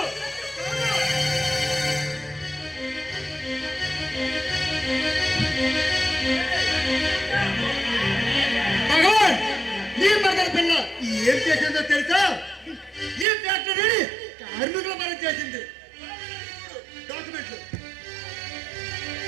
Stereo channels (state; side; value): drops out; left; at 13.2 s